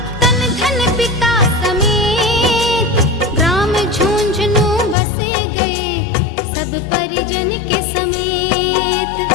तन धन पिता समेत, ग्राम झुंझुनू बसे गए सब परिजन के समेत।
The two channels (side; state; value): right; drops out; at 5.0 s